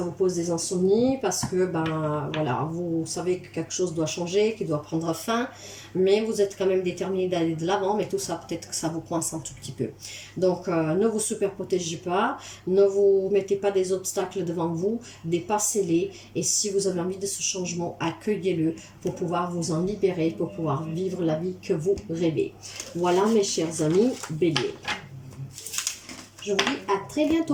vous pose des insomnies parce que ben voilà, vous savez que quelque chose doit changer, qu'il doit prendre fin, mais vous êtes quand même déterminé d'aller de l'avant, mais tout ça peut-être que ça vous coince un tout petit peu. Donc ne vous super protégez pas, ne vous mettez pas des obstacles devant vous, dépassez-les, et si vous avez envie de ce changement, accueillez-le pour pouvoir vous en libérer, pour pouvoir vivre la vie que vous rêvez. Voilà mes chers amis béliers. Je vous dis à très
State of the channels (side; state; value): both; identical; correlation 1.00